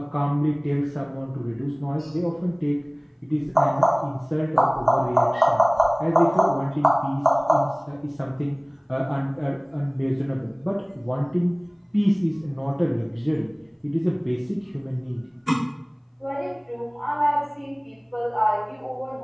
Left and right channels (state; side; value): identical; both; correlation 1.00